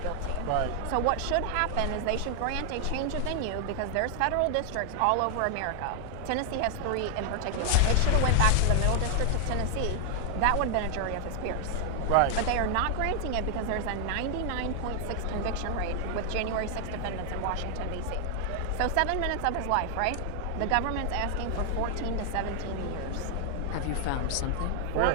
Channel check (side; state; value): both; different; correlation 0.00